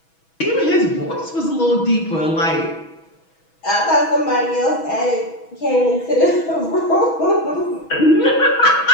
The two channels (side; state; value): right; late; 6.2 ms